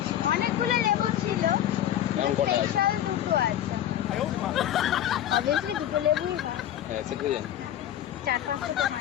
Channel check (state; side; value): quieter; right; 11.5 dB